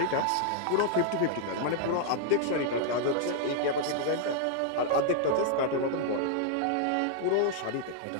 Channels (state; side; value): different; both; correlation 0.00